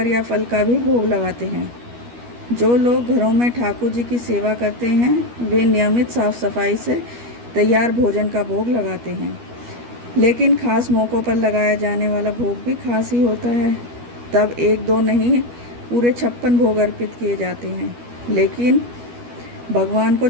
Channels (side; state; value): left; late; 12 ms